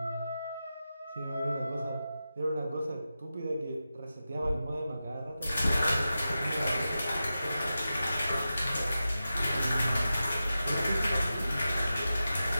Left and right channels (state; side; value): inverted; both; correlation -0.92